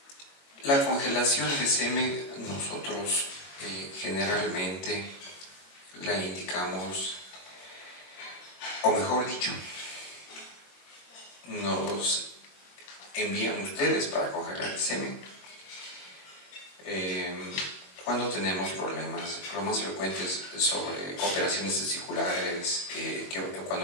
la congelación de semen nosotros generalmente la indicamos, o mejor dicho, nos envían ustedes para congelar el semen cuando tenemos problemas, lo más frecuentes sobre operaciones testiculares,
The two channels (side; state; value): right; late; 22 ms